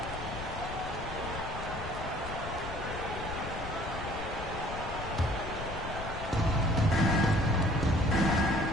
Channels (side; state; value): left; noise; rumble, 9 dB below the sound